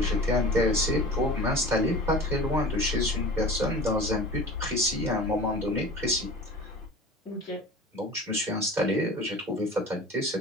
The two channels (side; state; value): both; normal; correlation 0.38